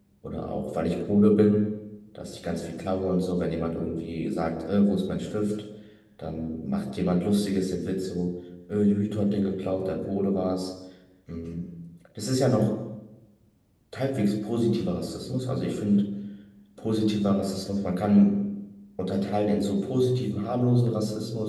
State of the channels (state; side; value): identical; both; correlation 1.00